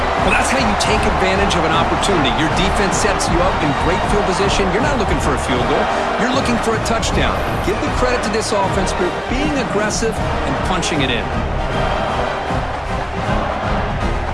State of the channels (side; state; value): both; identical; correlation 1.00